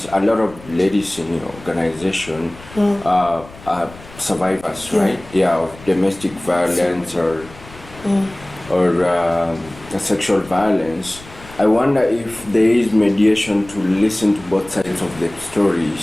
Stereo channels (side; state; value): left; noise; rumble, 20 dB below the sound